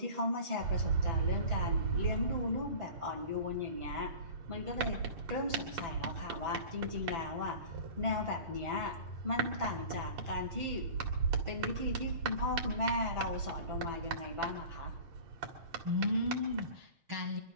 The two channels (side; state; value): left; late; 7.5 ms